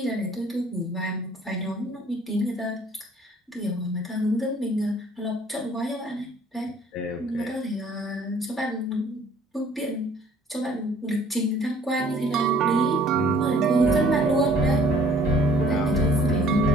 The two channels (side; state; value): both; normal; correlation 0.56